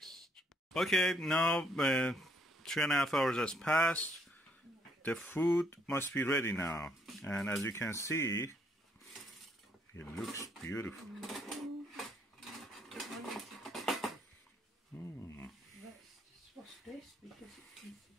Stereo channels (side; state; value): both; normal; correlation 0.69